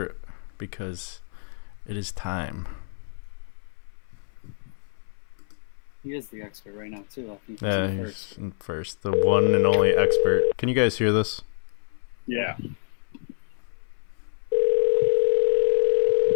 because it is time. He is the expert right now too. I think he's Yeah, in he's first. in first, the one and only expert. Can you guys hear this? Yeah.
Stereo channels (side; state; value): right; silent; 61 dB below the other